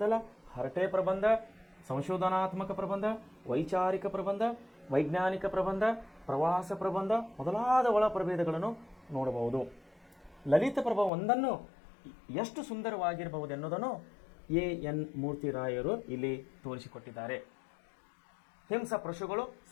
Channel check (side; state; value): right; drops out; at 11.1 s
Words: ಹರಟೆ ಪ್ರಬಂಧ, ಸಂಶೋಧನಾತ್ಮಕ ಪ್ರಬಂಧ, ವೈಚಾರಿಕ ಪ್ರಬಂಧ, ವೈಜ್ಞಾನಿಕ ಪ್ರಬಂಧ, ಪ್ರವಾಸ ಪ್ರಬಂಧ ಮೊದಲಾದ ಒಳ ಪ್ರಭೇದಗಳನ್ನು ನೋಡಬಹುದು. ಲಲಿತ ಪ್ರಬಂಧ ಒಂದನ್ನು ಎಷ್ಟು ಸುಂದರವಾಗಿರಬಹುದೆನ್ನುವುದನ್ನು ಎನ್ ಮೂರ್ತಿರಾಯರು ಇಲ್ಲಿ ತೋರಿಸಿಕೊಟ್ಟಿದ್ದಾರೆ. ಹಿಂಸ ಪಶುಗಳು